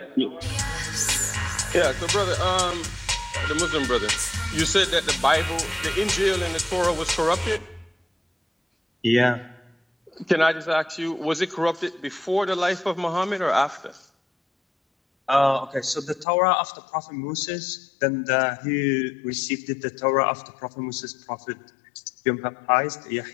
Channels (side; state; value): right; drops out; at 16.2 s